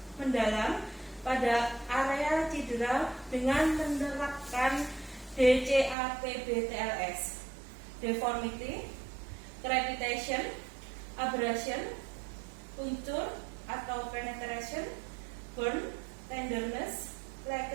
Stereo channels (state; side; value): drops out; left; at 6.0 s